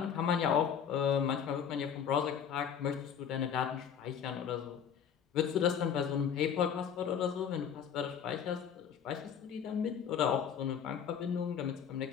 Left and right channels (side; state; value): right; quieter; 8.0 dB